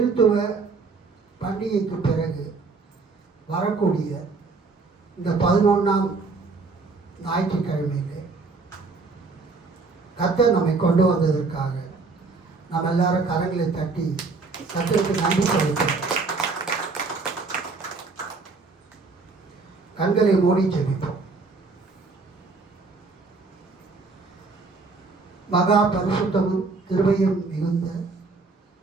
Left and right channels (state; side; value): quieter; left; 4.1 dB